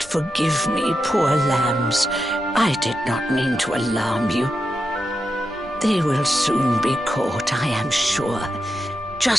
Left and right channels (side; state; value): right; noise; rumble, 22 dB below the sound